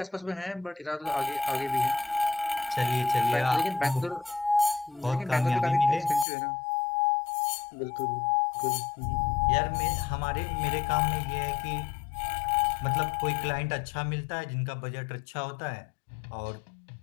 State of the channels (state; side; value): drops out; right; at 6.2 s